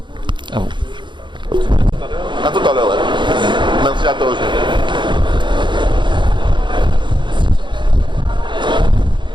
à vous. À tout à l'heure. Merci à toi aussi.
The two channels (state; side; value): late; left; 0.23 ms